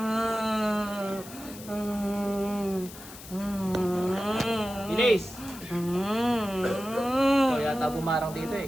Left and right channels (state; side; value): noise; left; hiss, 16 dB below the sound